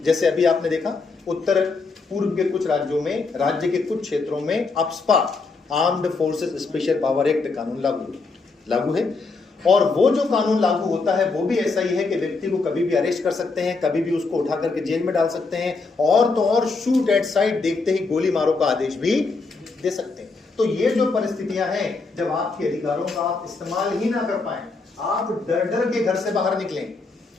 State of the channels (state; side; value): quieter; right; 4.1 dB